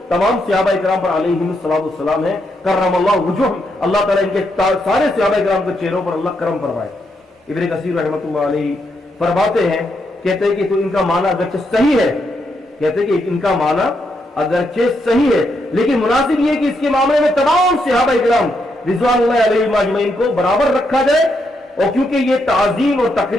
تمام صحابہ اکرام پر علیہم السلام ہے، کرم اللہ وجہ، اللہ تعالیٰ ان کے سارے صحابہ اکرام کے چہروں پر اللہ کرم فرمائے۔ ابن کثیر رحمۃ اللہ علیہ فرماتے ہیں، کہتے ہیں کہ تو ان کا معنی اگرچہ صحیح ہے، کہتے ہیں کہ ان کا معنی اگرچہ صحیح ہے، لیکن مناسب یہ کہ اس کے معاملے میں تمام صحابہ اکرام رضوان اللہ علیہم اجمعین کو برابر رکھا جائے، اور کیونکہ یہ تعظیم اور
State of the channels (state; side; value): normal; both; correlation 0.80